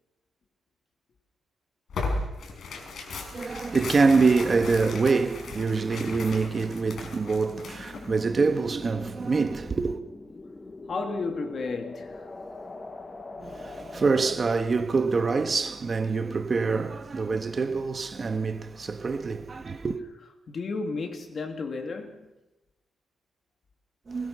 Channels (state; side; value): quieter; left; 3.3 dB